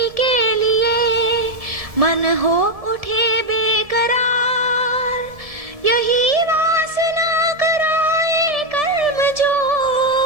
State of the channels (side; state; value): left; late; 1.7 ms